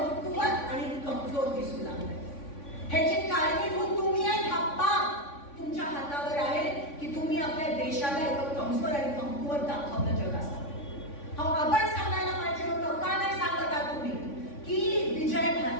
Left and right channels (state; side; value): late; right; 3.5 ms